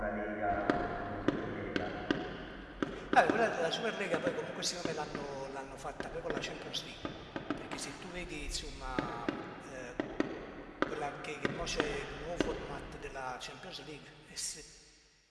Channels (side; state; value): both; identical; correlation 1.00